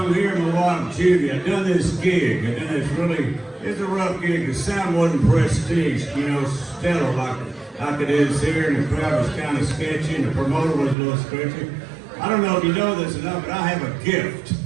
here in Milwaukee, Judy. I done this gig. I done this it's a rough gig. The sound wasn't prestige, stellar like it is here. And the crowd was kind of sketchy and the promoter was a little sketchy. I don't know if you know this enough, but I have a gift.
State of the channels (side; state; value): left; drops out; at 11.0 s